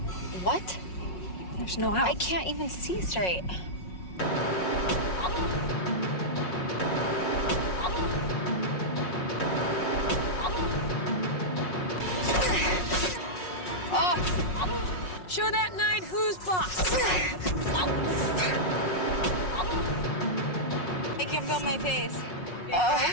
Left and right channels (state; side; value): late; right; 5.5 ms